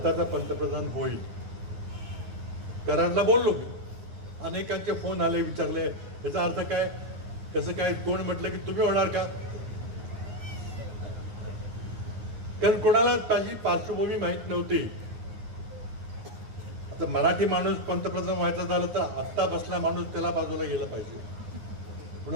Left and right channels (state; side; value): late; left; 9.6 ms